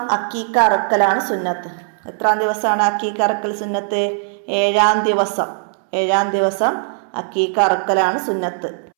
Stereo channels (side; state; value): left; silent; 66 dB below the other